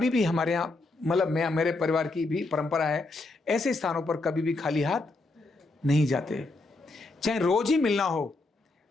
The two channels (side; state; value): right; quieter; 3.1 dB